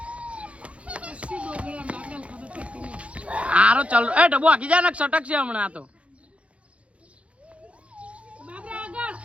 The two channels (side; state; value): left; late; 0.062 ms